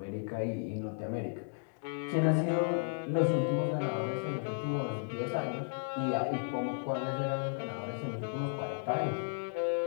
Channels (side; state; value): right; silent; digital silence